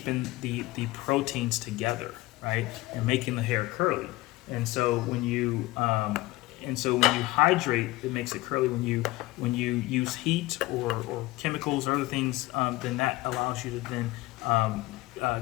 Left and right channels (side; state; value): right; quieter; 19.3 dB